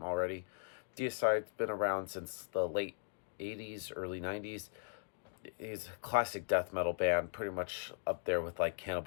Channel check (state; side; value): silent; right; digital silence